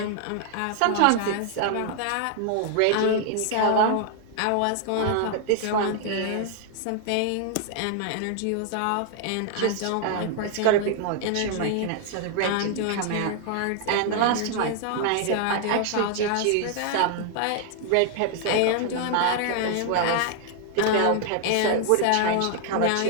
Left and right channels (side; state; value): both; different; correlation 0.00